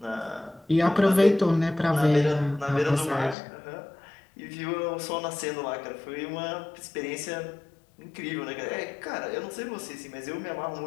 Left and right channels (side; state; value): right; drops out; at 3.4 s